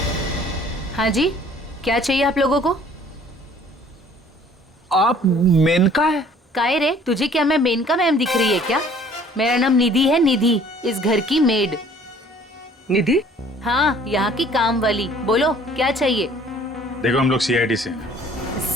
हाँ जी, क्या चाहिए आप लोगों को? आप मेनका है? काहे रे, तुझे क्या मैं मेनका मैम दिख रही है क्या? मेरा नाम निधि है, निधि, इस घर की मेड। निधि? हाँ, यहाँ की काम वाली। बोलो क्या चाहिए? देखो, हम लोग सीआईडी से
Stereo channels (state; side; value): normal; both; correlation 0.54